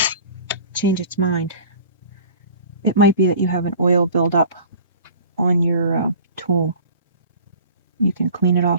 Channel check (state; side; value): inverted; both; correlation -0.44